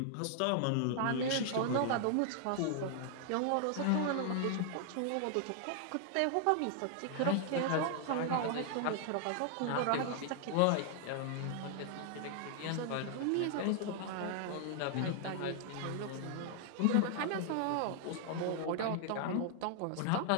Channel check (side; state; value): both; different; correlation 0.00